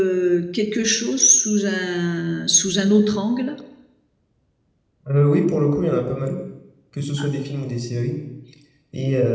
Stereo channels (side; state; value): both; identical; correlation 1.00